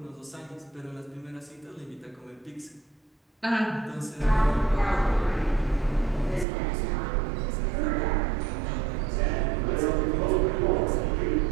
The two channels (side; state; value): left; drops out; at 6.5 s